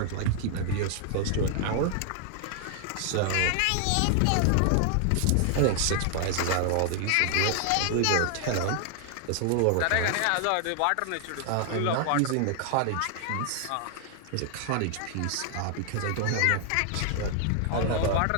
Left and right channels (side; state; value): both; different; correlation 0.00